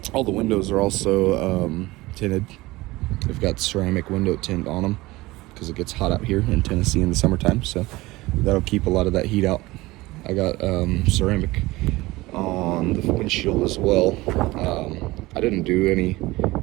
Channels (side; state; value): left; quieter; 19.9 dB